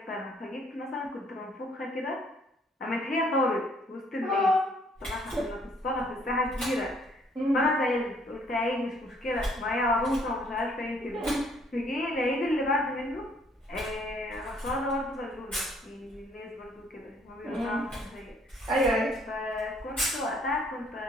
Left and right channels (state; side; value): normal; both; correlation 0.63